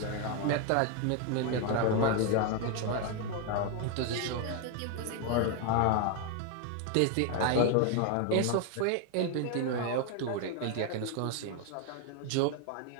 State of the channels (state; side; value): different; both; correlation 0.01